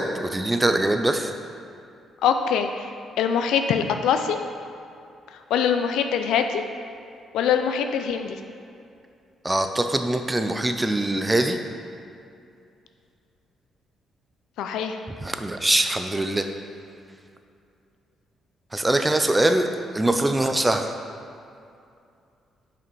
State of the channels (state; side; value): normal; both; correlation 0.77